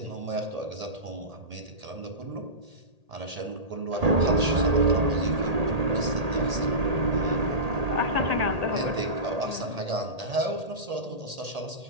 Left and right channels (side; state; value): left; late; 1.8 ms